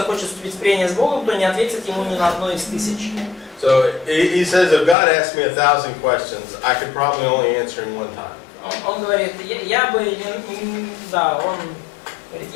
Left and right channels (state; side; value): drops out; right; at 5.0 s